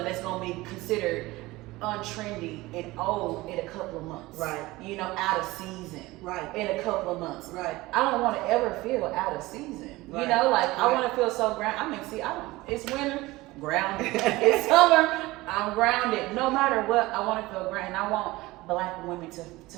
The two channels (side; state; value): left; quieter; 19.8 dB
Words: that's going to be considered untrendy and old in a couple of months. Right. You know, out of season. Right. In a couple of months. Right. I don't want to ever feel out of season. Right. You know, like I want to feel so grounded. I mean, it's winter, grounded. It's summer, I'm grounded. No matter what, I want to feel grounded. And I want Black women